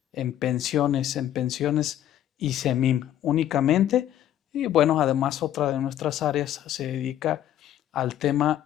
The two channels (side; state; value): right; quieter; 11.6 dB